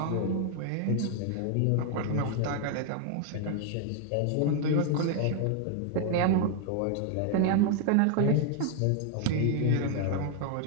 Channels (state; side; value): different; both; correlation 0.00